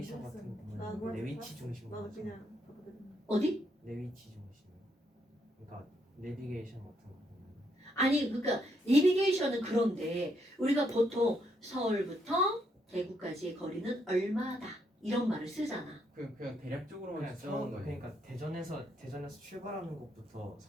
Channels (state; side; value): normal; both; correlation 0.75